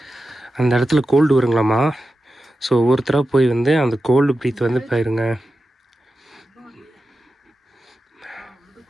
அந்த இடத்துல கோல்டு வருங்களாமா. ஸோ ஒவ்வொருத்தராக போய் வந்து அந்த கோல்டு ப்ரீத் வந்து பாருங்க,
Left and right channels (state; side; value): normal; both; correlation 0.92